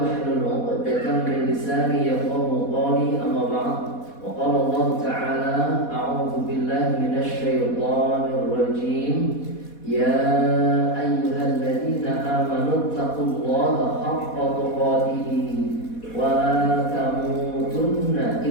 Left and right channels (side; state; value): right; late; 4.2 ms